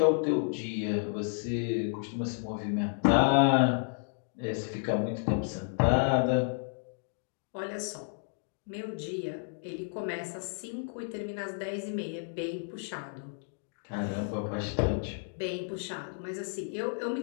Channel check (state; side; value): silent; right; digital silence